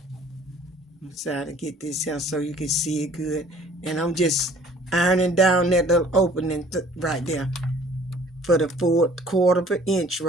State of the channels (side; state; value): both; normal; correlation 0.54